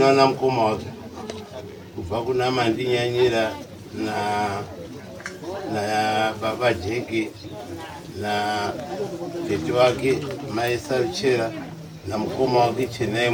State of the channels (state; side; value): identical; both; correlation 1.00